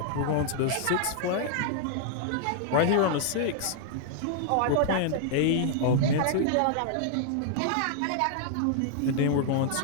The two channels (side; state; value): both; different; correlation -0.01